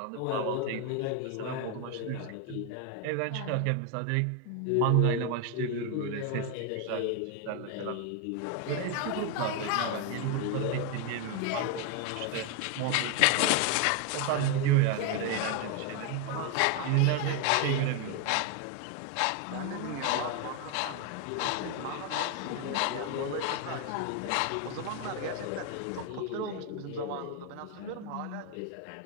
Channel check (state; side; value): different; both; correlation 0.01